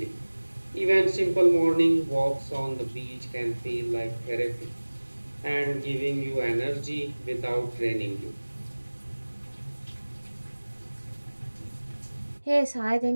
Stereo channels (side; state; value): both; inverted; correlation -1.00